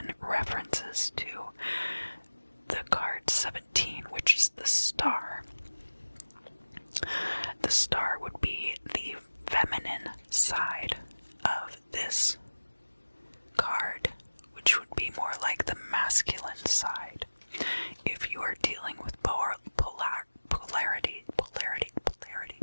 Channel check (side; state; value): both; inverted; correlation -1.00